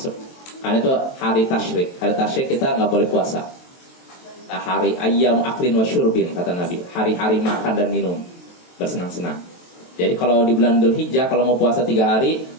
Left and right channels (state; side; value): late; right; 23 ms